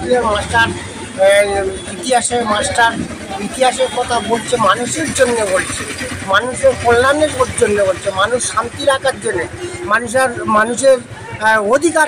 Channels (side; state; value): both; identical; correlation 1.00